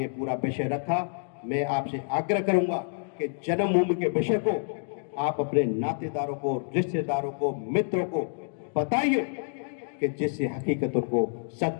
पूरा विषय रखा। मैं आपसे आग्रह करूंगा कि जन्मभूमि के विषय को आप अपने नातेदारों को, रिश्तेदारों को, मित्रों को बताइए, कि जिससे हकीकत उनको,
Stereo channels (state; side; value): silent; right; digital silence